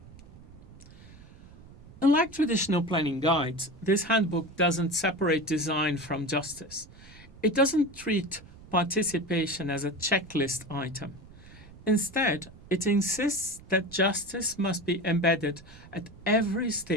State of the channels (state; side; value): noise; right; rumble, 20 dB below the sound